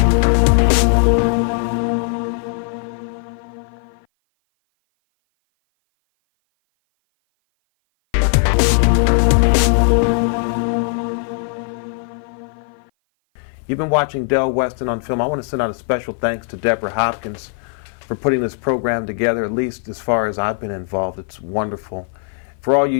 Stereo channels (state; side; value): silent; right; 56 dB below the other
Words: You've been watching Del Weston on Film. I want to send out a special thanks to Deborah Hopkins for putting this program together, at least as far as I've been involved. It's wonderful. For all you